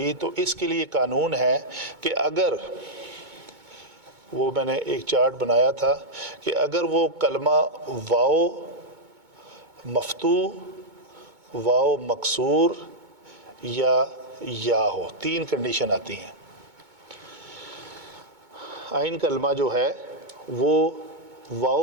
تو اس کے لیے قانون ہے کہ اگر وہ میں نے ایک چارٹ بنایا تھا کہ اگر وہ کلمہ واو مفتوح، واو مکسور یا ہو، تین کنڈیشن آتی ہیں. عین کلمہ جو ہے وہ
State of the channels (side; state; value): left; late; 2.2 ms